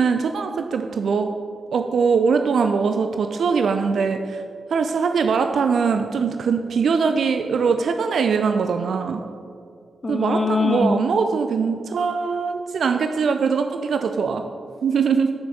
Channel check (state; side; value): quieter; left; 4.5 dB